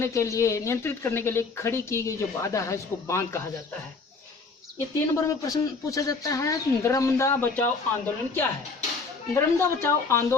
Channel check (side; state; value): right; quieter; 4.3 dB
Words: के लिए खड़ी की गई जो बाधा है उसको बांध कहा जाता है। ये 3 नंबर में प्रश्न पूछा जाता है, नर्मदा बचाओ आंदोलन क्या है। नर्मदा बचाओ